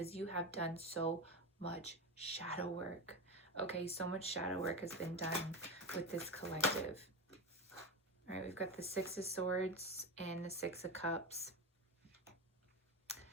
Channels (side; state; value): both; normal; correlation 0.19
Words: you have done so much shadow work. Okay, so much shadow work has been done with this collective. All right, we've got the Six of Swords and the Six of Cups.